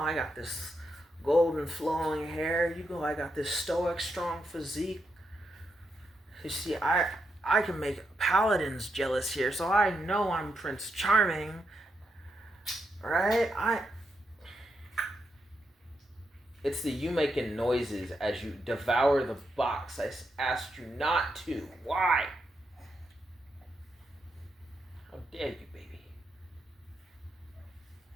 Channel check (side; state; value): both; normal; correlation 0.83